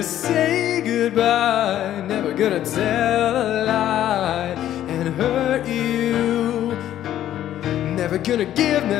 say goodbye, never gonna tell a lie and hurt you, never gonna give you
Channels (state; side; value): quieter; right; 12.0 dB